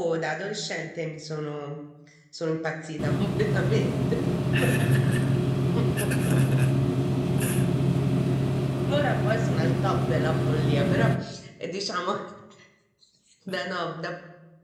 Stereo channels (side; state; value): both; identical; correlation 1.00